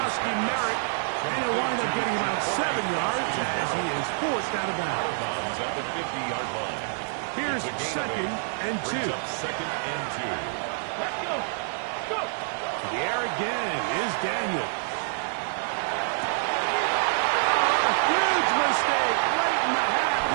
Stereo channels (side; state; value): left; silent; digital silence